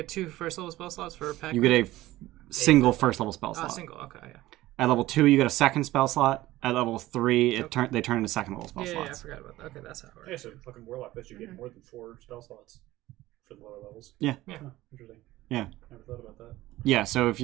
2 first level spell slots for pack. You get a single first level spell Oh, slot. single. Okay, yeah. At level 2, you get a second spell slot. At level 3, they turn into second level spell Yeah, I slots. forgot about that. Okay, that's how it works. Yeah, so fucking warlock lets you get more than 4 spell slots for the lower levels. Yeah. Yeah. Huh, interesting. Yeah. Never thought about that. Yeah, so if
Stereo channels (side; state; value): left; quieter; 16.8 dB